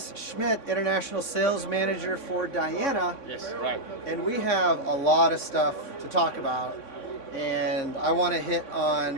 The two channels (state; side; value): late; right; 3.6 ms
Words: Schmidt, International Sales Manager for Diana. Yes, right. And we have a lot of stuff to talk about. And I want to hit on